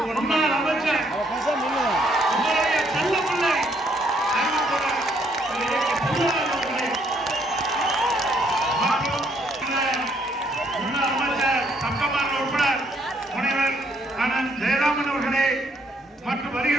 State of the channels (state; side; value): normal; both; correlation 0.69